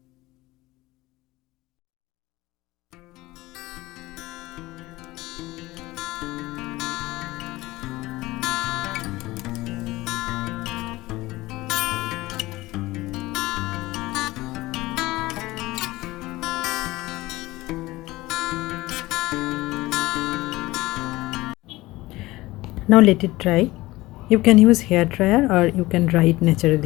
Now let it dry. You can use hair dryer or you can dry it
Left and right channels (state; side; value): quieter; right; 19.2 dB